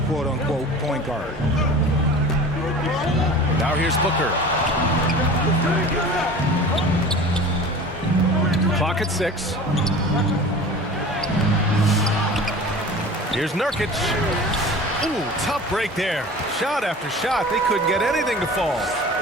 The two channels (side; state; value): both; normal; correlation 0.39